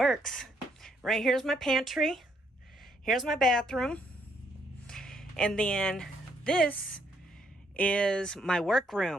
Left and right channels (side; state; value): both; normal; correlation 0.72